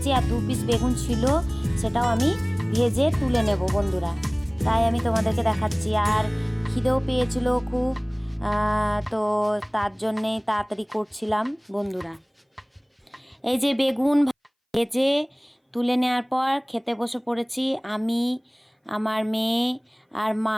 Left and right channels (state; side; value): identical; both; correlation 1.00